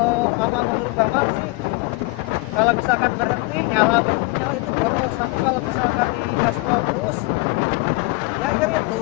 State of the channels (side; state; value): right; quieter; 24.2 dB